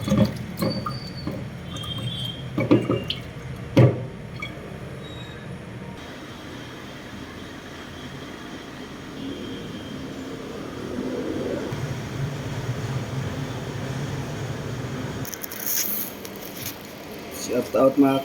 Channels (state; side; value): identical; both; correlation 1.00